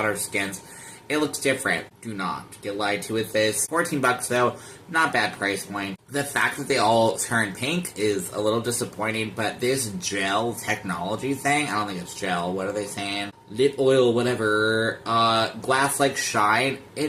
our skins. It looks different. Do not get lied to with this. $14 though, not bad price point. The fact that they all turn pink is a little disappointing, but this gel technology thing, I don't think it's gel, what are they saying? Lip oil, whatever, glass-like shine,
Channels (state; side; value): identical; both; correlation 1.00